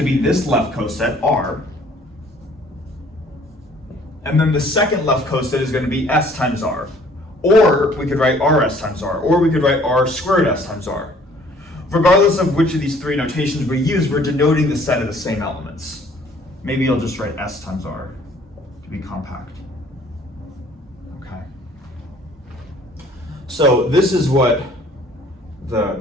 be this left coset, R. And then the second left coset is going to be S times R. Or we could write RS times R. Or we could write R squared S times R. Regardless of which of these three notations we use, we're denoting the set of the same elements. Maybe I'll just write S times R to be compact. Okay. So this is what the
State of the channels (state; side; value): normal; both; correlation 0.56